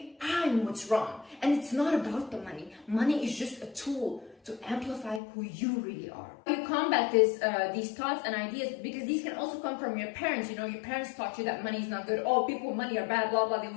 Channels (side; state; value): right; drops out; at 5.2 s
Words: I'm what's wrong. And it's not about the money. Money is just a tool to amplify who you really are. You combat these thoughts and ideas, because these can also come from your parents. You know, your parents taught you that money is not good. Oh, people with money are bad, blah, blah, they